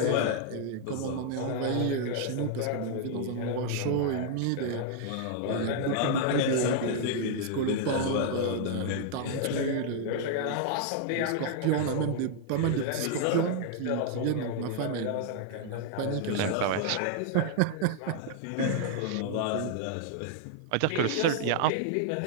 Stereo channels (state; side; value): different; both; correlation -0.01